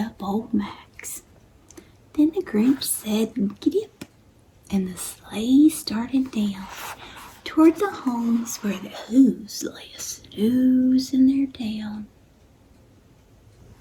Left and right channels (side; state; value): both; identical; correlation 1.00